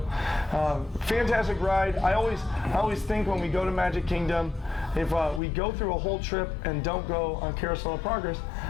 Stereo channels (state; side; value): drops out; right; at 5.4 s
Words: fantastic ride. I always think when we go to Magic Kingdom, if we go through a whole trip and don't go on Carousel of Progress,